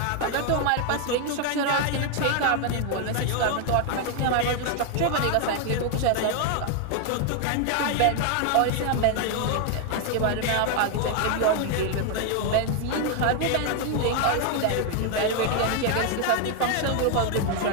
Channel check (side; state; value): both; different; correlation 0.01